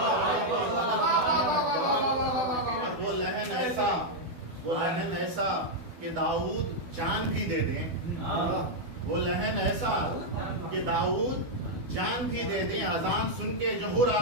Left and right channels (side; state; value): left; late; 12 ms